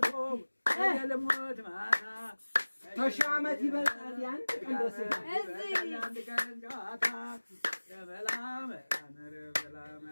ተሺህ ዓመት ይበልጣል ያንድ ቀን ደስ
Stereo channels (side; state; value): both; inverted; correlation -1.00